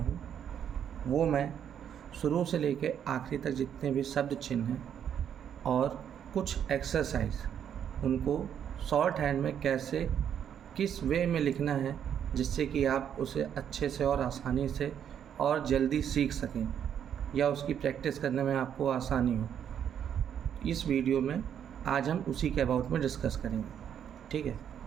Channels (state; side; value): quieter; left; 8.9 dB